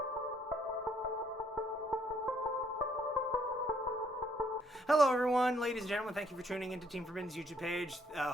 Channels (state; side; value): normal; both; correlation 0.67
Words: Hello, everyone, ladies and gentlemen. Thank you for tuning into Team Forbidden's YouTube page.